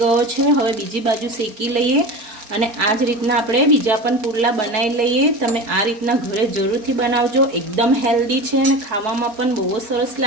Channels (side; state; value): left; late; 4.3 ms